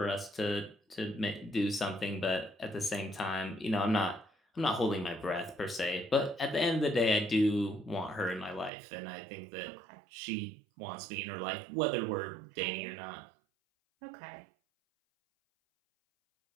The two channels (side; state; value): left; drops out; at 8.7 s